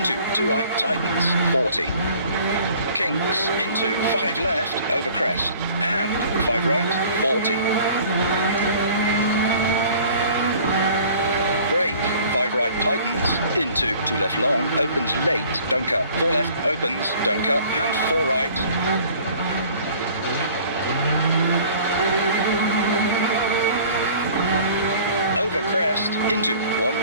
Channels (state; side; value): inverted; both; correlation -0.50